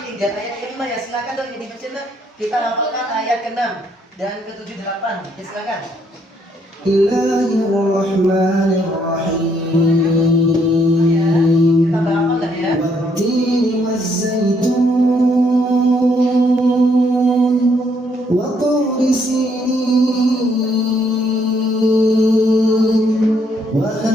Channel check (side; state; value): both; normal; correlation 0.71